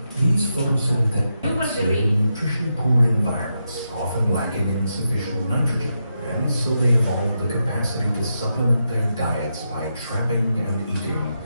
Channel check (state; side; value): inverted; both; correlation -0.85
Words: These photosynthetic plants live in nutrition-poor environments, often lacking in sufficient nitrogen, and so they evolved the capacity to supplement their diets by trapping and eating